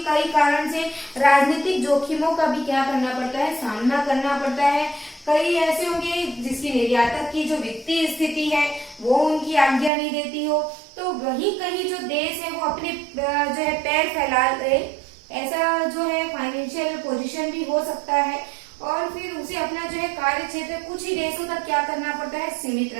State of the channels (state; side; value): drops out; left; at 9.9 s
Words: कई कारण से राजनीतिक जोखिमों का भी क्या करना पड़ता है, सामना करना पड़ता है। कई ऐसे होंगे जिसकी निर्यातक की जो वित्तीय स्थिति है वो उनकी आज्ञा नहीं देती हो, तो वही कहीं जो देश है वो अपने जो है पैर फैला ले, ऐसा जो है फाइनेंशियल पोजीशन भी हो सकता है। और फिर उसे अपना जो है कार्य क्षेत्र कुछ ही देशों तक क्या करना पड़ता है, सीमित